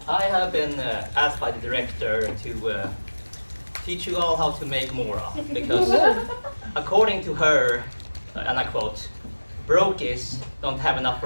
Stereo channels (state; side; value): inverted; both; correlation -1.00